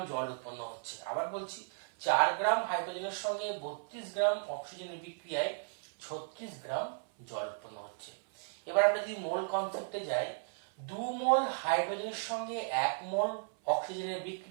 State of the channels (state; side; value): silent; left; 54 dB below the other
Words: জল উৎপন্ন হচ্ছে। আবার বলছি, 4 গ্রাম হাইড্রোজেনের সঙ্গে 32 গ্রাম অক্সিজেনের বিক্রিয়ায় 36 গ্রাম জল উৎপন্ন হচ্ছে। এবার আমরা যদি মোল কনসেপ্টে যাই, 2 মোল হাইড্রোজেনের সঙ্গে 1 মোল অক্সিজেনের